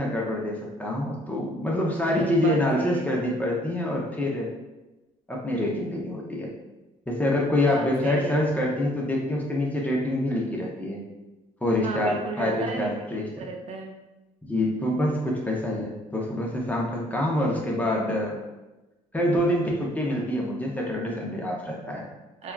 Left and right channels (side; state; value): both; normal; correlation 0.63